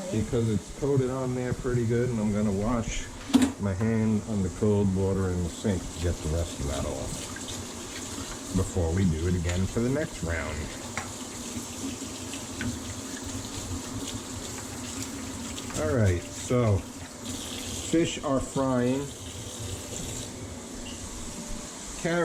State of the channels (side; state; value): both; identical; correlation 1.00